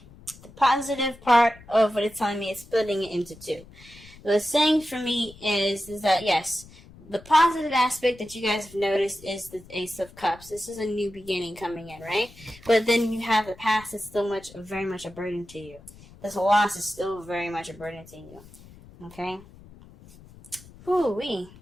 positive part of what it's telling me is splitting it into 2. The saying for me is that yes, the positive aspect that you guys have noticed is the Ace of Cups. This is a new beginning coming in, right? But then you have the past that's still very much a burden to you. This loss is still very much a burden to you. Okay? Whoo-wee.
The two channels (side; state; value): left; noise; rumble, 21 dB below the sound